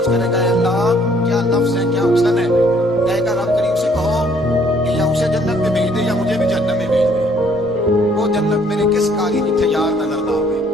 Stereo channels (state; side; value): noise; right; hum, 27 dB below the sound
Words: करेगा अल्लाह क्या लफ्ज है, क्या हुस्न है। कहेगा रब करीम से कहो कि या उसे जन्नत में भेज दे या मुझे भी जहन्नम में भेज दे। वो जन्नत मेरे किस काली जिथे यार नजर ना आवे,